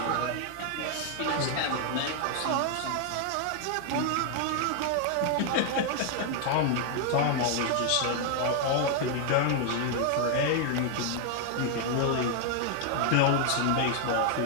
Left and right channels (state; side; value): different; both; correlation 0.00